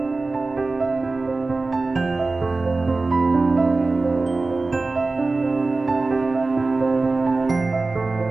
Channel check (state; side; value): quieter; left; 3.5 dB